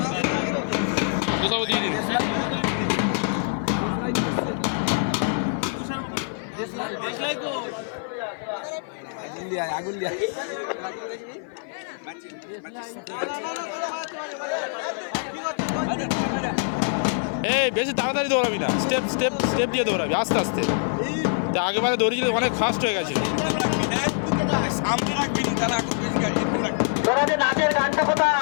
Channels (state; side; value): silent; right; 55 dB below the other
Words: তো সব দিয়ে দিন। এই বেশি তাড়াতাড়ি দৌড়াবি না, স্টেপ স্টেপ স্টেপ দিয়ে দৌড়াবি, আস্তে আস্তে। তা আগেবারে দৌড়িয়েছিল, অনেক ফাস্ট হয়ে গেছিল।